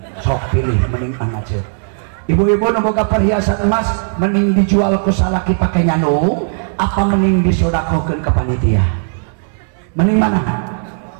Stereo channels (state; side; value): silent; left; digital silence